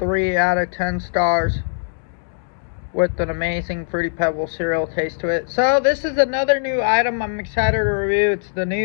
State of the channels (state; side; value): silent; right; digital silence